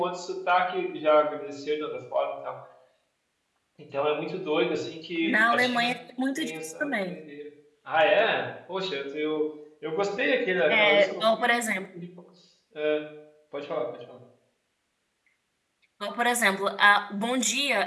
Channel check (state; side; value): identical; both; correlation 1.00